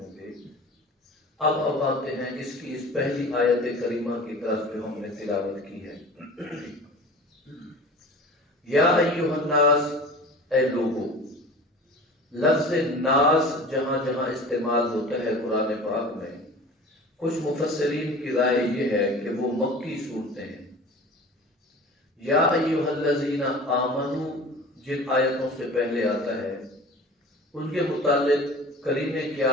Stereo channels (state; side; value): normal; both; correlation 0.39